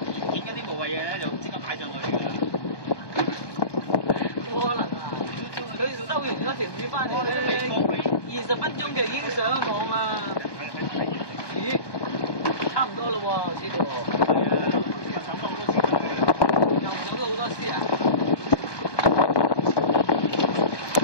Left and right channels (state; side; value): late; right; 1.2 ms